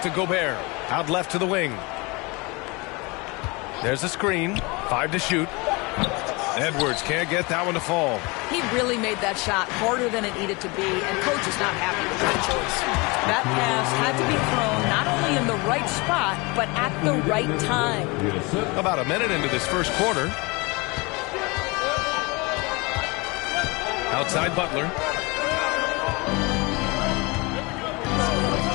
Gobert. Out left to the wing. There's a screen. 5 to shoot. Edwards can't get that one to fall. He really made that shot harder than it needed to be, and coach is not happy with that choice. That pass had to be thrown not only in the right spot, but at the right time. About a minute into this first quarter. Outside Butler.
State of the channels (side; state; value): right; quieter; 26.5 dB